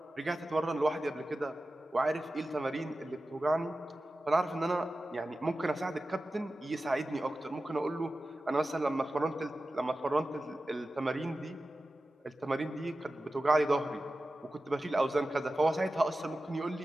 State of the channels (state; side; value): normal; both; correlation 0.94